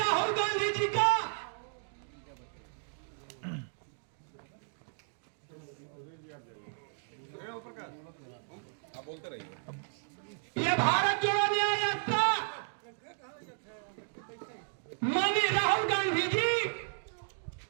गांधी जी का यह भारत जोड़ो न्याय यात्रा माननीय राहुल गांधी जी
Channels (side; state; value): left; silent; digital silence